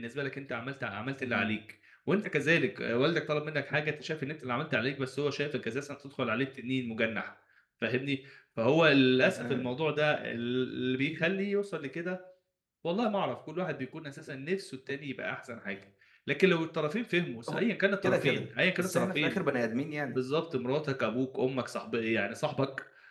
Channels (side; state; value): both; identical; correlation 1.00